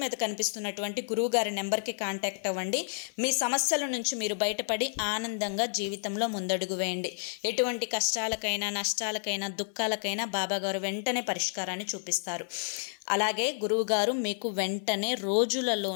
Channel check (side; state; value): right; silent; 58 dB below the other